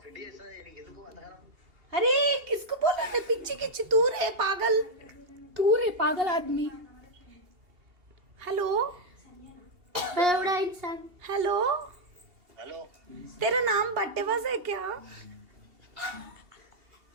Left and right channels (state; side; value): late; left; 2.8 ms